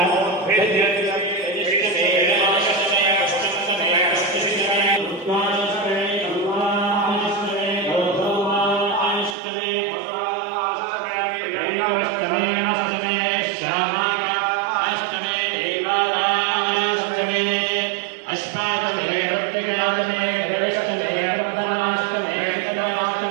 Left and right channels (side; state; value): left; drops out; at 9.3 s